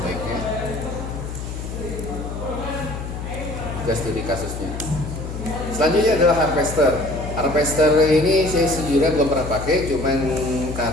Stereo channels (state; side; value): noise; left; hum, 7 dB below the sound